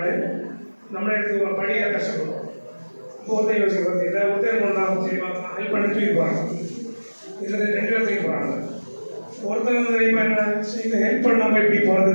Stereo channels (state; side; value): inverted; both; correlation -1.00